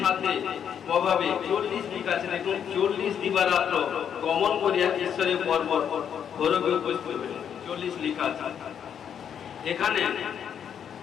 প্রভাবে 40 দিন আছে দেখুন, 40 দিবারাত্র গমন করিয়া ঈশ্বরের পর্বত হরবে উপস্থিত হইলেন। 40 লেখা আছে এখানে।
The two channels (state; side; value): quieter; right; 8.4 dB